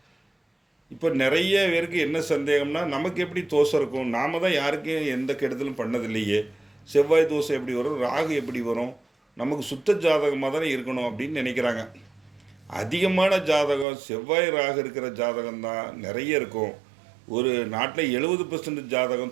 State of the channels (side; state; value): left; drops out; at 13.9 s